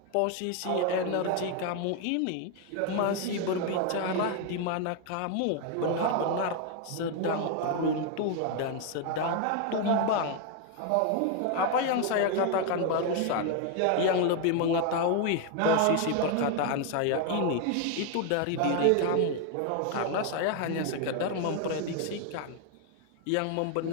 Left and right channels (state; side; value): different; both; correlation 0.01